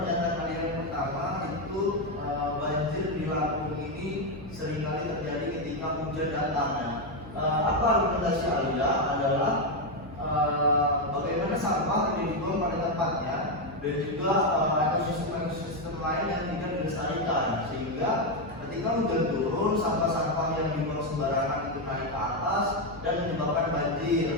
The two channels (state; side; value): noise; right; hum, 16 dB below the sound